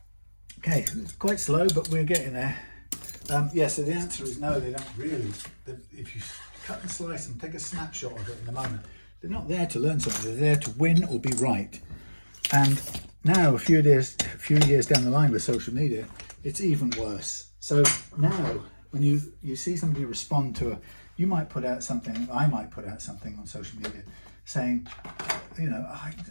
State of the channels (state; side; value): inverted; both; correlation -1.00